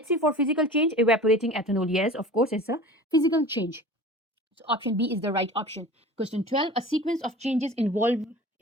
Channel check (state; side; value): normal; both; correlation 0.39